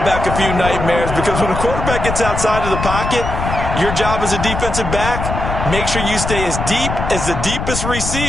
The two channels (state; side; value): noise; left; rumble, 4 dB below the sound